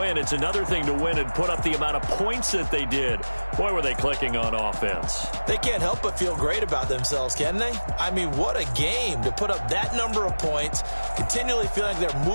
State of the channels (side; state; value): both; inverted; correlation -1.00